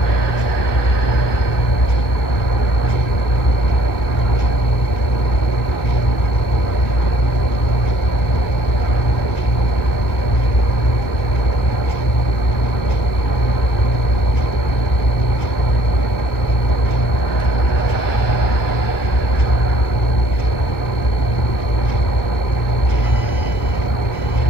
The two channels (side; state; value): right; late; 1.6 ms